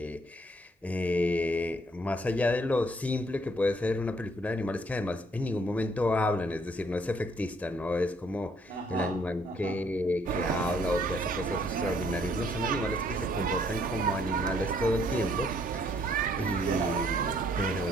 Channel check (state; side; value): normal; both; correlation 0.66